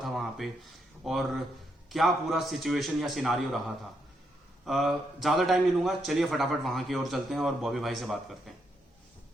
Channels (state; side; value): normal; both; correlation 0.78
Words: था वहां पे और क्या पूरा सिचुएशन या सिनारियो रहा था। ज्यादा टाइम नहीं लूंगा, चलिए फटाफट वहां की ओर चलते हैं और बॉबी भाई से बात करते